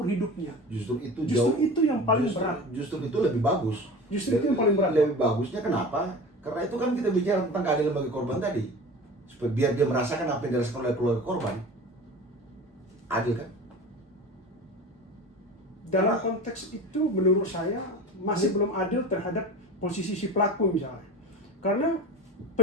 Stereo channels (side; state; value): both; normal; correlation 0.34